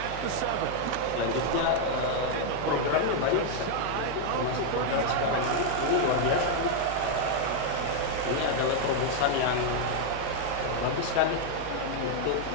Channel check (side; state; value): both; different; correlation 0.00